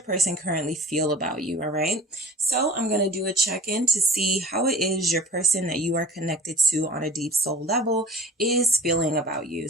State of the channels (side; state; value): both; normal; correlation 0.42